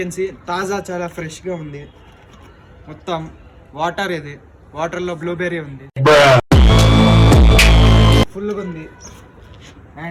సీ తాజా చాలా ఫ్రెష్గా ఉంది. మొత్తం వాటర్ ఇది, వాటర్లో బ్లూబెర్రీ ఉంది, ఫుల్గా ఉంది.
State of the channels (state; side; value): identical; both; correlation 1.00